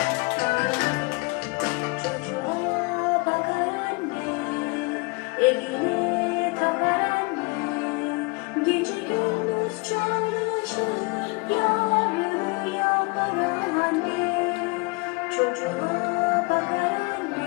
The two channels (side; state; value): right; quieter; 28.1 dB